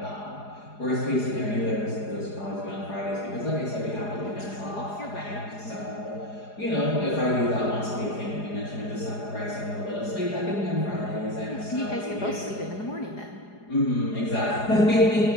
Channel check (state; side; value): late; right; 4.8 ms